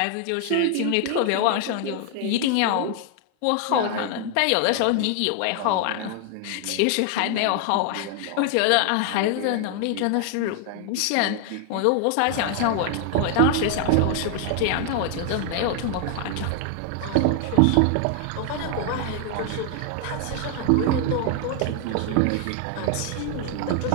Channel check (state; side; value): different; both; correlation 0.00